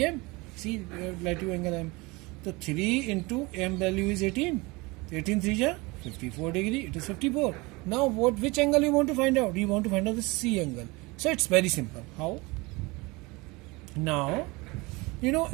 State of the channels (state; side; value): quieter; left; 24.5 dB